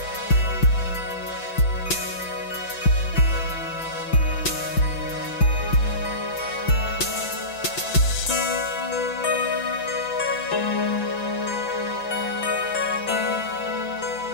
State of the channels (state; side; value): late; right; 5.9 ms